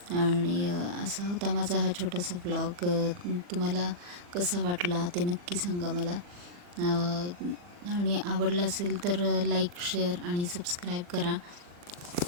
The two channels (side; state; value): left; late; 40 ms